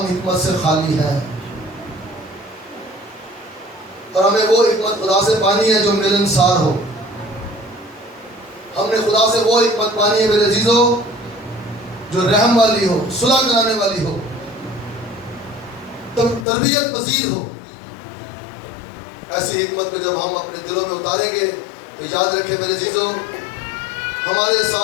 حکمت سے خالی ہیں، اور ہمیں وہ حکمت خدا سے پانی ہے جو ملنسار ہو۔ ہم نے خدا سے وہ حکمت پانی ہے میرے عزیزو جو رحم والی ہو، صلح کرانے والی ہو، تربیت پذیر ہو۔ ایسی حکمت کو جب ہم اپنے دلوں میں اتاریں گے تو یاد رکھیں میرے عزیزو، ہمارے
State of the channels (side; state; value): right; drops out; at 16.4 s